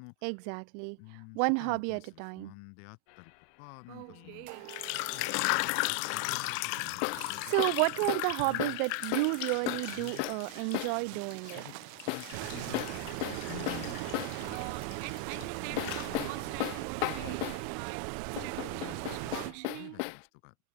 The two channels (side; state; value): both; different; correlation 0.00